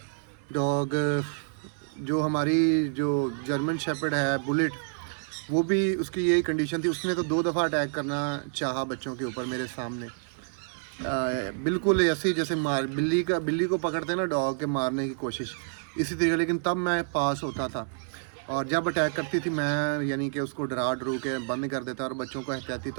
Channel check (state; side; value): silent; left; 59 dB below the other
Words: डॉग। जो हमारी जो जर्मन शेपर्ड है बुलेट, वो भी उसकी यही कंडीशन थी। उसने तो 2 दफ़ा अटैक करना चाहा बच्चों के ऊपर मेरे सामने, बिल्कुल ऐसे ही जैसे बिल्ली को पकड़ते हैं ना डॉग के, मारने की कोशिश इसी तरीके। लेकिन तब मैं पास होता था और जब अटैक करती थी मैं यानी कि उसको डरा डरू के बंद कर देता और बच्चों को एहतियाती